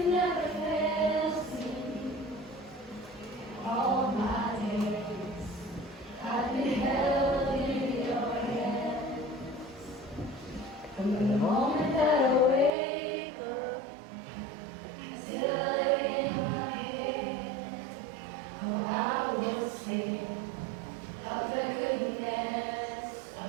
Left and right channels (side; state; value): left; drops out; at 12.7 s